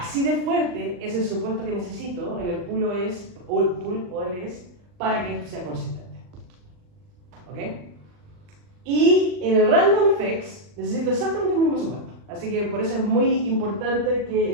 de fuerte es el supuesto que necesito en el pool OLS para que esto sea consistente. ¿Ok? Y en el random effects necesito exactamente el mismo supuesto. Así que por eso es muy importante que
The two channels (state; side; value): late; left; 40 ms